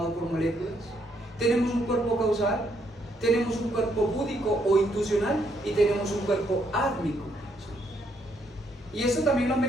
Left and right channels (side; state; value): both; normal; correlation 0.73